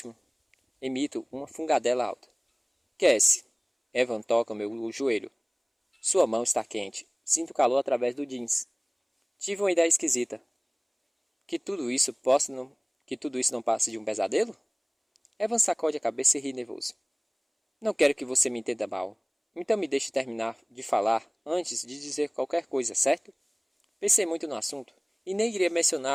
Emito uma fungadela alta. Cassie. Evan toca meu joelho. Sua mão está quente. Sinto calor através do jeans. Tive uma ideia esquisita. Que tudo isso não passe de um pesadelo? Evan sacode a cabeça e ri nervoso. Não quero que você me entenda mal. Então me deixe terminar de falar antes de dizer qualquer coisa, certo? Pensei muito no assunto e nem iria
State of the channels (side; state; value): both; identical; correlation 1.00